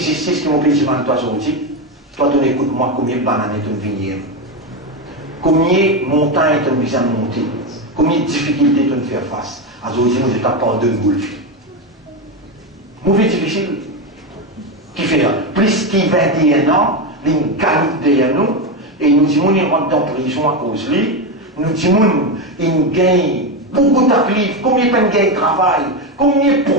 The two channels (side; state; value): both; normal; correlation 0.12